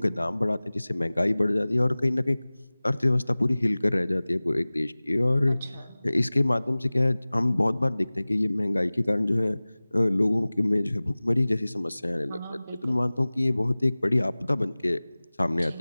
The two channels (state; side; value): inverted; both; correlation -0.99